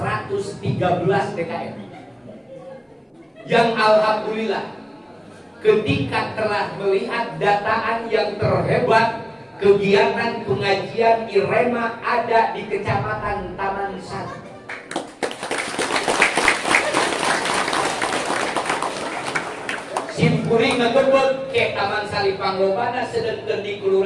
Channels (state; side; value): identical; both; correlation 1.00